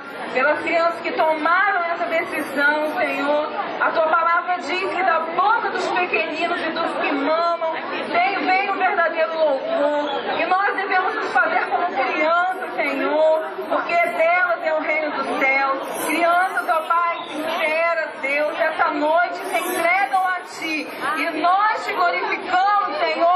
pelas crianças que tomaram essa decisão, Senhor. A Tua palavra diz que da boca dos pequeninos e dos que mamam vem o verdadeiro louvor. E nós devemos nos fazer como crianças, Senhor, porque delas é o reino dos céus. Crianças, ó Pai, sinceras, Deus, essa noite se entregam a Ti. E nós te glorificamos,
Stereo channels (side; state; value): both; identical; correlation 1.00